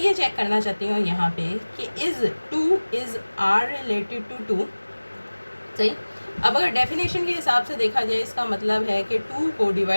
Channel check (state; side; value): inverted; both; correlation -1.00